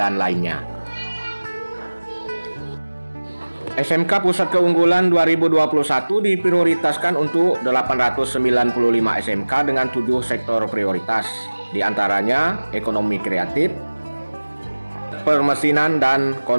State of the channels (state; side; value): inverted; both; correlation -1.00